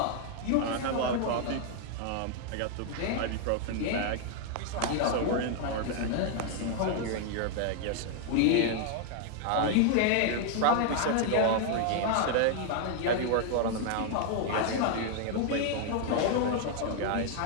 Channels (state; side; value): different; both; correlation 0.00